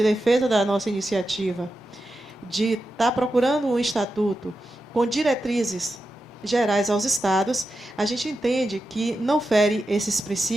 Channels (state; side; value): normal; both; correlation 0.90